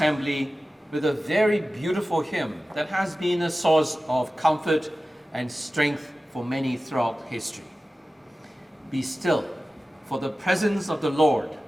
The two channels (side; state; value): both; normal; correlation 0.95